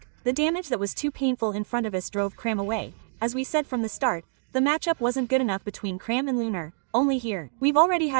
The damage that was too painful in front of us drove Cram away. As we said from the start, the matchup wasn't good enough between Cram and Lunar. Only here. We've already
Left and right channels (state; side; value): silent; left; digital silence